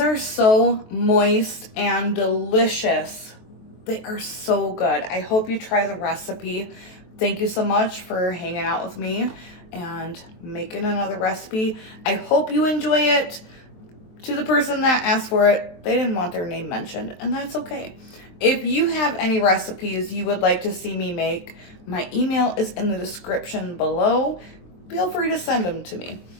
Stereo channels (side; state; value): right; late; 23 ms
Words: so moist and delicious. They are so good. I hope you try the recipe. Thank you so much for hanging out with me and making another recipe. I hope you enjoy it. To the person that asked for it, they didn't want their name mentioned, and that's okay. If you have any recipes you would like to see me make, my email is in the description below. Feel free to send them to me.